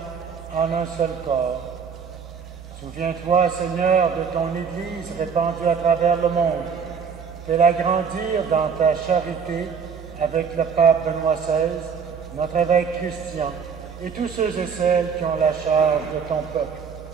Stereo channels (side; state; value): left; quieter; 6.3 dB